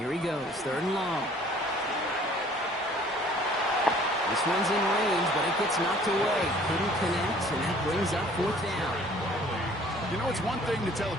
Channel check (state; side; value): normal; both; correlation 0.54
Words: he goes, third and long. This one's in range, but it gets knocked away. Couldn't connect, and that brings up fourth down. You know, it's one thing to tell a